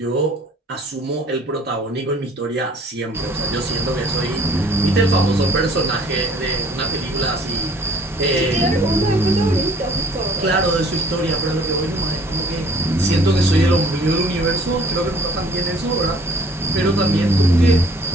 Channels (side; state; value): both; normal; correlation 0.55